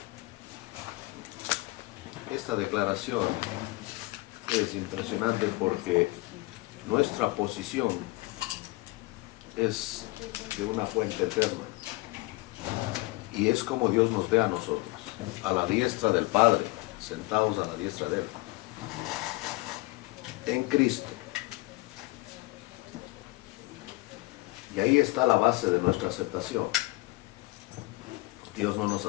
Esta declaración es impresionante porque nuestra posición es de una fuente eterna y es como Dios nos ve a nosotros, a la diestra del Padre, sentados a la diestra de Él, en Cristo. Y ahí está la base de nuestra aceptación. Dios no nos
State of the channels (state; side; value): quieter; right; 23.1 dB